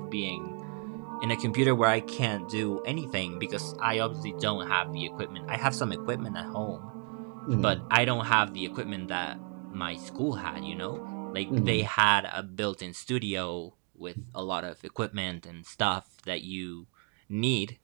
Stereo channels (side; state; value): left; quieter; 38.1 dB